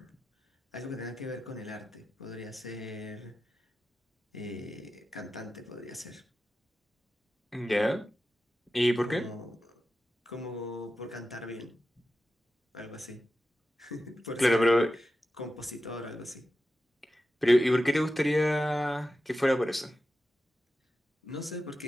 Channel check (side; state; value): both; normal; correlation 0.92